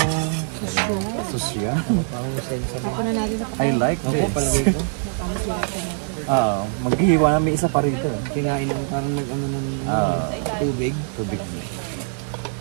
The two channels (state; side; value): silent; left; digital silence